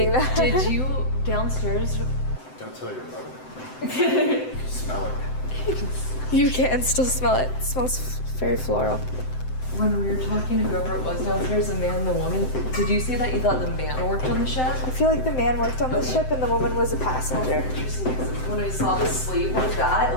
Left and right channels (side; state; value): right; late; 7.8 ms